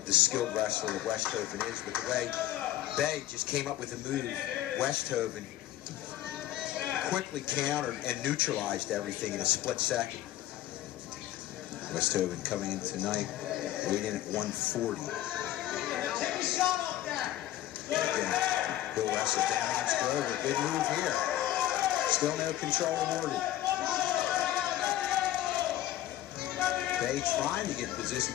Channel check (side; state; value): right; quieter; 13.7 dB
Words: the skilled wrestler that Westhoven is, but the way Bay just came up with a move, Westhoven quickly countered and neutralized everything in a split second. Westhoven coming in tonight, weighed in at 140. Take a shot off that. Again, he'll wrestle down against Grover. Good move here. Still no control awarded. Bay trying to get in position,